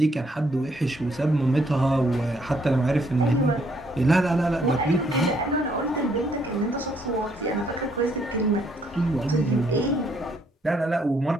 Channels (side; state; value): both; normal; correlation 0.69